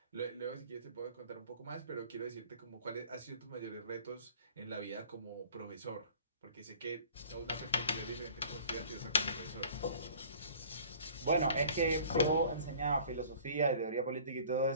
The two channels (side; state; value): both; inverted; correlation -0.48